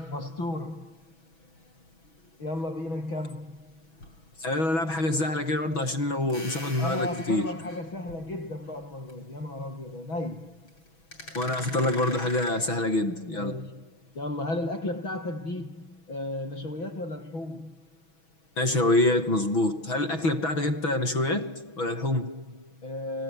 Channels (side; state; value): right; late; 6.2 ms